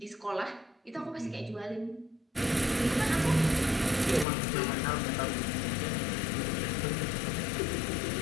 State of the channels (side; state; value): right; drops out; at 4.2 s